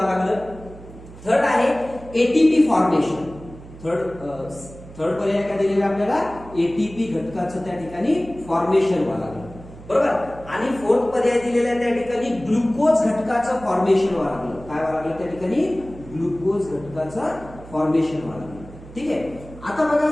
लागलं. थर्ड आहे एटीपी फॉर्मेशन. थर्ड पर्याय काय दिलेला आपल्याला, एटीपी घटकाचं त्या ठिकाणी फॉर्मेशन व्हायला लागलं. बरोबर. आणि फोर्थ पर्याय दिलेला आहे त्या ठिकाणी ग्लुकोज घटकाचं फॉर्मेशन व्हायला लागलं. काय व्हायला लागलं त्या ठिकाणी, ग्लुकोज घटकाचं फॉर्मेशन व्हायला लागलं. ठीक आहे. आता बघा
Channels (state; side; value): noise; right; hum, 17 dB below the sound